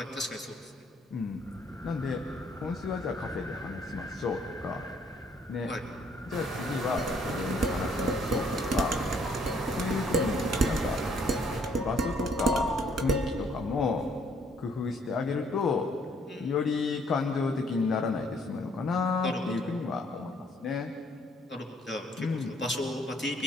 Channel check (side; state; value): both; normal; correlation 0.64